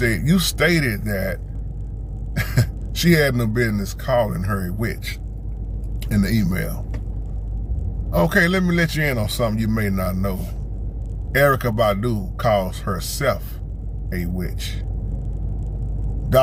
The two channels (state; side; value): identical; both; correlation 1.00